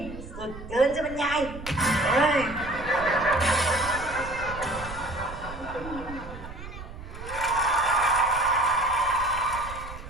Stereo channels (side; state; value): right; noise; rumble, 12 dB below the sound